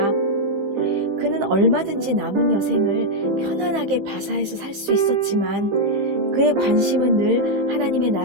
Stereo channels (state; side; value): late; left; 15 ms